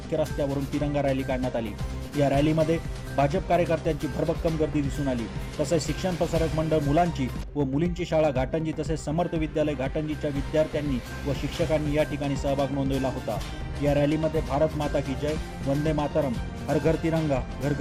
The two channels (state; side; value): identical; both; correlation 1.00